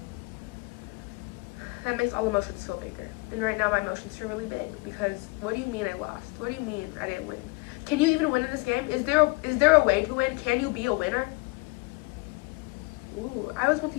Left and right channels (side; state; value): right; quieter; 27.0 dB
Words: that makes all emotions feel bigger. And right now my emotions feel really big because what do you mean I lost? What do you mean I didn't win? Can you even win in this game? Is there a way to win? Can you be a winner? Ooh, I always want